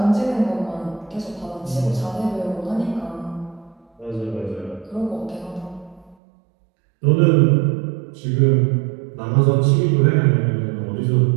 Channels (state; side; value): drops out; left; at 6.2 s